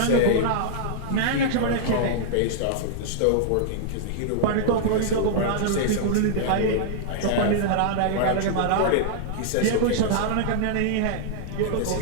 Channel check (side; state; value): both; different; correlation -0.01